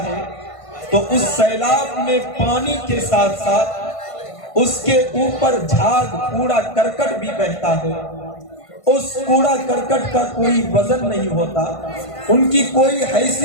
ہے تو اس سیلاب میں پانی کے ساتھ ساتھ اس کے اوپر جھاگ کوڑا کرکٹ بھی بہتا ہے. اس کوڑا کرکٹ کا کوئی وزن نہیں ہوتا, ان کی کوئی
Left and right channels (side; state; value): right; late; 1.5 ms